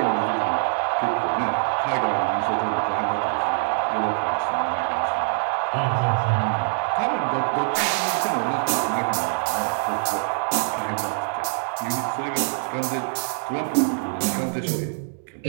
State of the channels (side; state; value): left; silent; 63 dB below the other